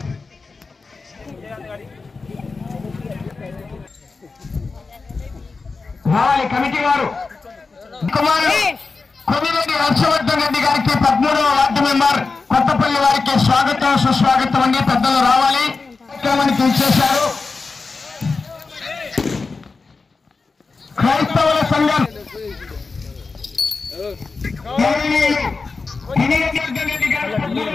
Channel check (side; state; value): right; quieter; 4.2 dB